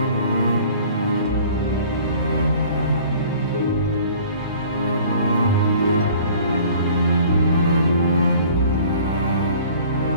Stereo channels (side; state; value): both; inverted; correlation -0.50